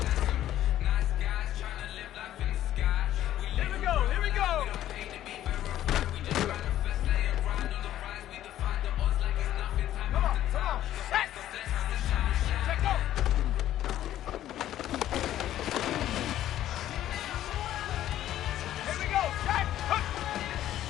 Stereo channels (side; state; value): right; quieter; 12.6 dB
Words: Here we go. Here we go. Come on. Come on. Set. Set, go. Here we go. Set. Hook.